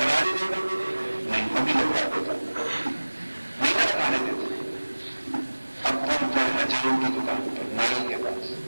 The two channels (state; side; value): inverted; both; correlation -1.00